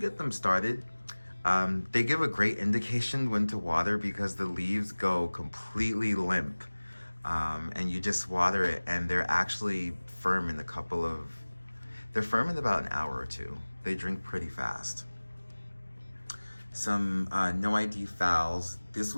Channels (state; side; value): inverted; both; correlation -1.00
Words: them started, they give a great indication when to water because the leaves go completely limp. And you just water it and they're actually firm in they're firm in about an hour or two. They drink pretty fast. Some no ID fowls. This